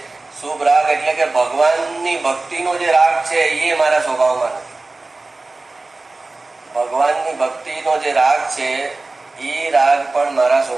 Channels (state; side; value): quieter; left; 3.3 dB